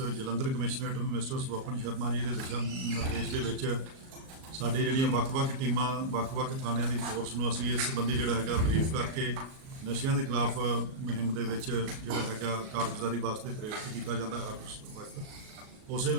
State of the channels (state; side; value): late; left; 38 ms